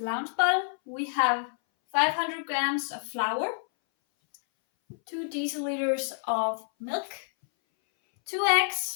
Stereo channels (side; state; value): right; silent; 59 dB below the other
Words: we have 500 grams of flour, 2 deciliters of milk, 2